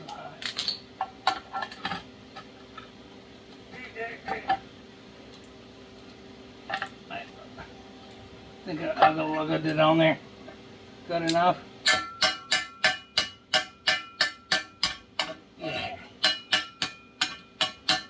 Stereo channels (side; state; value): both; identical; correlation 1.00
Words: high. I think I'll go look at it on there. Good enough. Yeah.